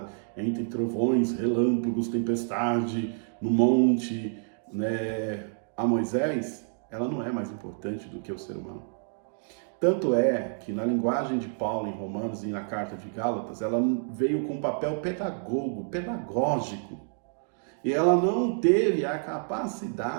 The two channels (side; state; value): left; silent; digital silence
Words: entre trovões, relâmpagos, tempestade, no monte, a Moisés, ela não é mais importante do que o ser humano. Tanto é que na linguagem de Paulo em Romanos e na carta de Gálatas, ela veio com um papel pedagógico. E ela não teve a